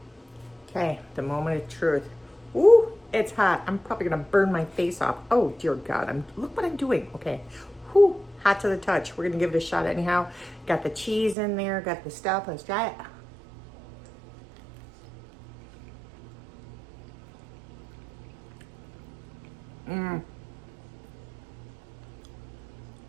Okay, the moment of truth. Ooh, It's hot. I'm probably gonna burn my face off. Oh dear God, look what I'm doing. Okay, whew, hot to the touch. We're gonna give it a shot anyhow. Got the cheese in there, got the stuff. Let's try it.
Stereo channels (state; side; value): drops out; left; at 11.4 s